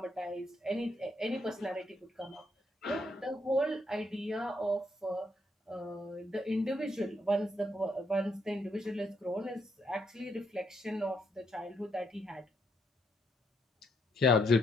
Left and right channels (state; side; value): normal; both; correlation 0.75